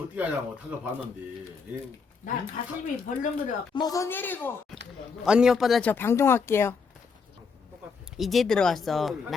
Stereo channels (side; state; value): right; quieter; 5.3 dB